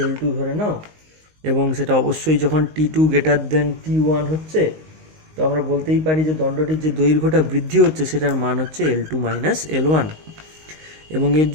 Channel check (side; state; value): left; late; 19 ms